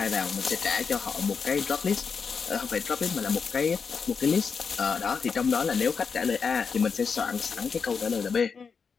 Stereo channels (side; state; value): right; quieter; 5.7 dB